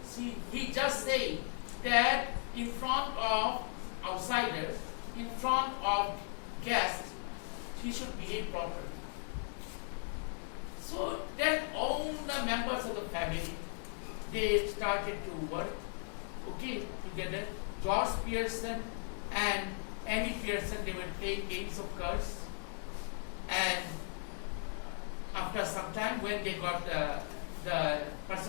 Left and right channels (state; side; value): silent; right; 53 dB below the other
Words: See, he just said that in front of outsiders, in front of guests, he should behave properly. So then all the members of the family, they started to work, okay, together. George Pearson and Annie Pearson, they were playing games of cards. And after some time, when they got the